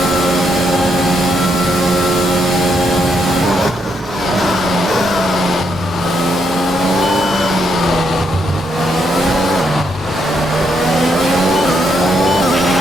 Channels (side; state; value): both; normal; correlation 0.77